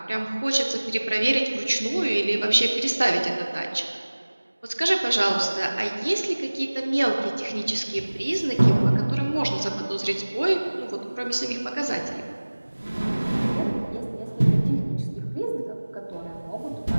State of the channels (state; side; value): inverted; both; correlation -1.00